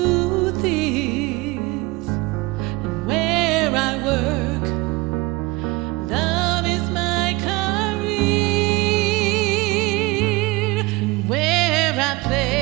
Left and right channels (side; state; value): left; quieter; 22.8 dB